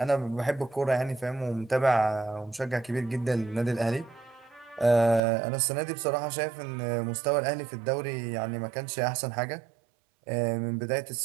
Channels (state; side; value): drops out; left; at 5.2 s